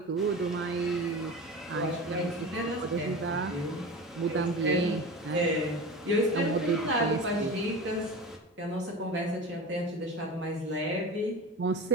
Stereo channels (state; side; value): normal; both; correlation 0.31